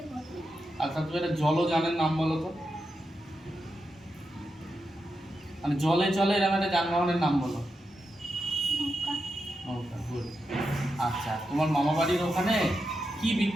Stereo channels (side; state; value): both; normal; correlation 0.87